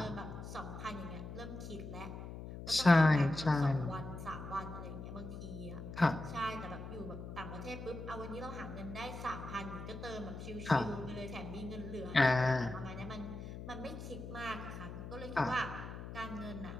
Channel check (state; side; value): noise; left; hum, 9 dB below the sound